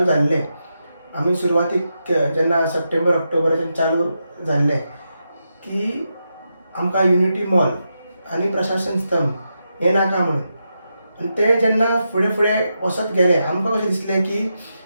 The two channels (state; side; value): inverted; both; correlation -0.86